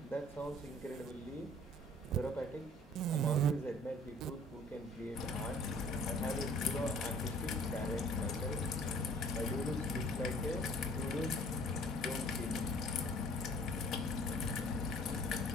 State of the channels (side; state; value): both; normal; correlation 0.53